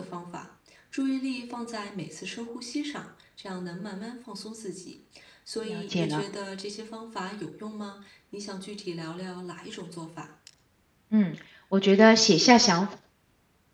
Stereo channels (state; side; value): identical; both; correlation 1.00